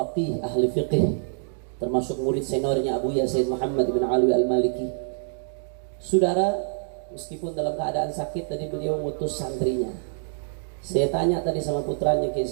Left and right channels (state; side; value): silent; left; digital silence